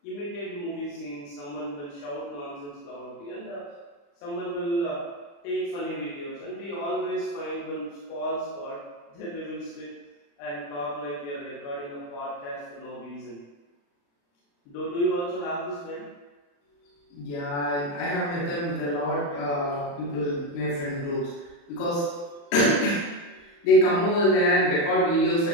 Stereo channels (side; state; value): right; late; 35 ms